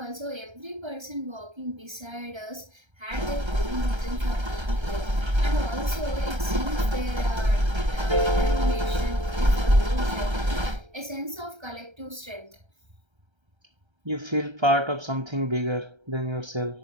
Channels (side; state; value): left; late; 1.3 ms